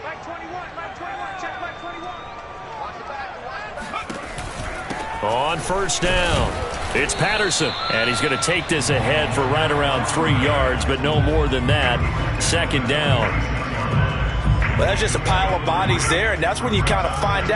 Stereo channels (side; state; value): both; identical; correlation 1.00